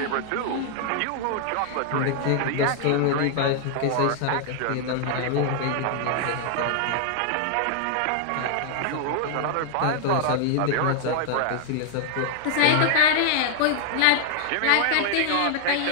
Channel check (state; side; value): different; both; correlation -0.01